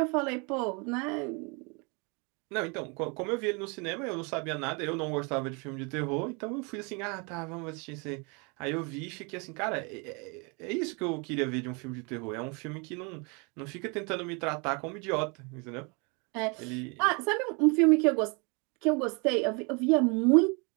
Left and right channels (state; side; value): quieter; left; 31.9 dB